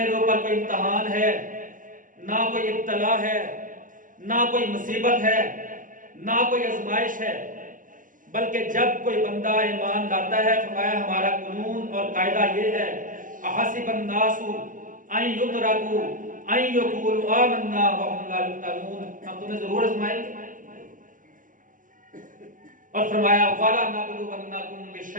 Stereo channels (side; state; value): left; late; 0.38 ms